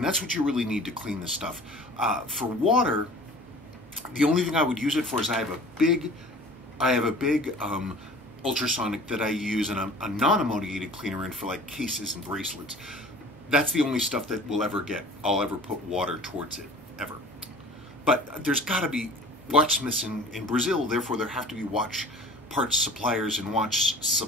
that's what you really need to clean this stuff. For water, the only thing I would use it for is I have a big ultrasonic that I use and a non-ammoniated cleaner in for like cases and bracelets. That's the only stuff that I'll ever put water towards it, ever. But there's got to be watchsmiths in Brazil, therefore there have to be watch parts suppliers and watch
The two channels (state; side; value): normal; both; correlation 0.45